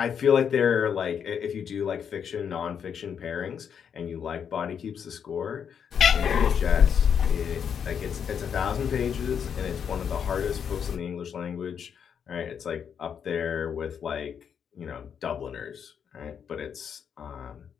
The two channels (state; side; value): quieter; right; 7.6 dB